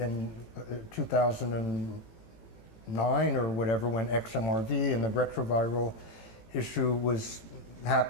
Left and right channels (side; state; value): right; late; 18 ms